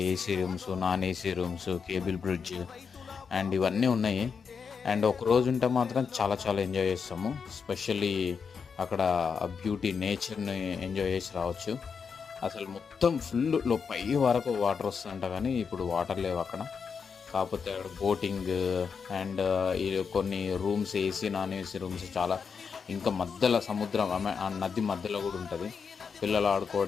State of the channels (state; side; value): quieter; right; 6.0 dB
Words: AC rooms, non AC rooms, cable bridge and ఇవన్నీ ఉన్నాయి. అండ్ ఒక రోజు ఉంటే మాత్రం చాలా చాలా ఎంజాయ్ చేస్తాము. స్పెషల్లీ అక్కడ ఆ బ్యూటీ నేచర్ని ఎంజాయ్ చేసి రావచ్చు. అసలు మొత్తం ఫుల్ పై వరకు వాటర్ వస్తుందంట, కానీ ఇప్పుడు వాటర్ లేవు అక్కడ. కాకపోతే అక్కడ బోటింగ్ అండ్ కొన్ని rooms AC non AC rooms చాలా, ఇంకా మధ్యలో సముద్రం ఆ నది మధ్యలో కూడా ఉంటుంది పిల్లలు